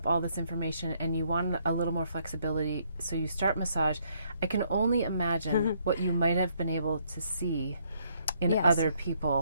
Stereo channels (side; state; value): both; inverted; correlation -0.70